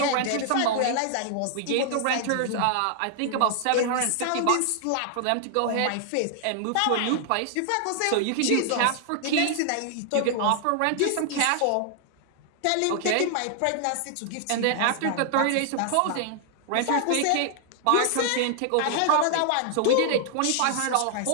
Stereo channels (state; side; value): different; both; correlation 0.00